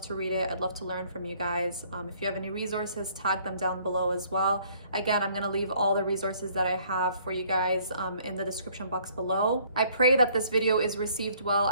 to read it. I'd love to learn from you guys. If you have any resources, tag them down below as well. Again, I'm gonna leave all the resources that I have for you guys in the description box below. I pray that this video is received well.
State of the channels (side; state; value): both; inverted; correlation -0.61